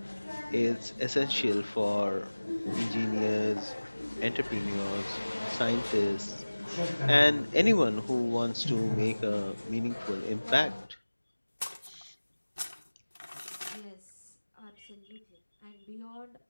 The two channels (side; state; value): both; inverted; correlation -1.00